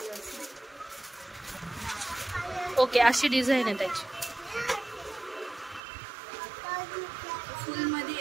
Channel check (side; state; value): left; drops out; at 5.8 s